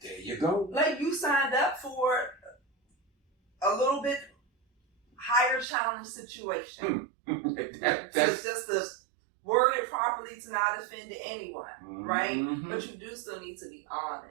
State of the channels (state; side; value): drops out; left; at 5.7 s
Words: There you go. Like you signed up for a little bit higher challenge situation. That's just to word it properly to not offend anyone, right? But you do still need to be